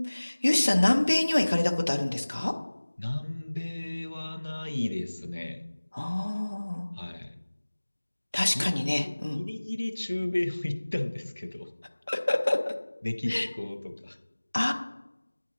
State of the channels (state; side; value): inverted; both; correlation -1.00